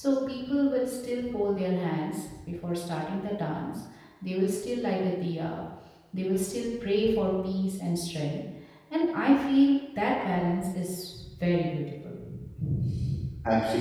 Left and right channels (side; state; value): both; identical; correlation 1.00